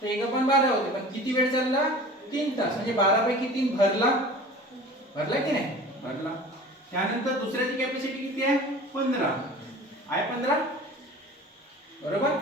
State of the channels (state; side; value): normal; both; correlation 0.40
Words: तर एक पण 12 होते पण किती वेळ चालला? 3 तास. म्हणजे 12 पैकी 3 भरला. भरला की नाही? भरला. त्यानंतर दुसऱ्याची कॅपॅसिटी किती आहे? 15 आहे. 15 बरोबर.